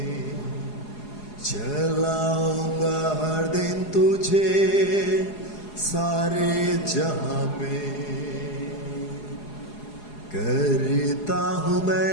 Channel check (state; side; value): late; right; 4.8 ms